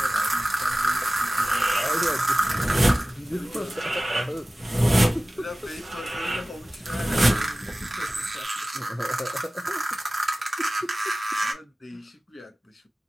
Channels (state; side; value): normal; both; correlation 0.97